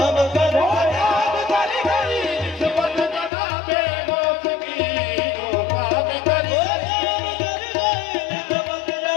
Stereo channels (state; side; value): drops out; right; at 3.3 s